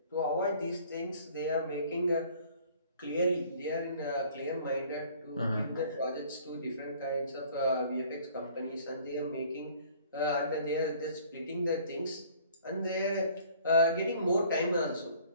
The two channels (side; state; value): both; inverted; correlation -0.54